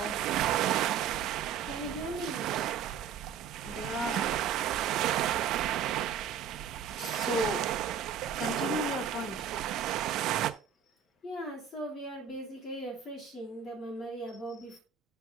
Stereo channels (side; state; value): left; quieter; 7.5 dB